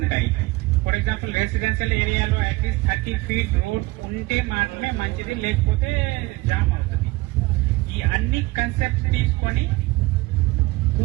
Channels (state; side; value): quieter; left; 21.8 dB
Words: ఫర్ ఎగ్జాంపుల్ రెసిడెన్షియల్ ఏరియాలో అట్లీస్ట్ 30 feet రోడ్ ఉంటే మాత్రమే మంచిది, లేకపోతే జామ్ అవుతుంది. ఈ అన్ని కన్సెప్ట్స్ తీసుకొని